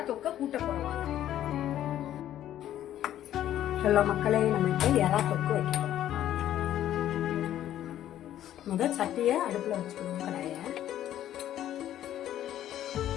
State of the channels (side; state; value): right; quieter; 12.0 dB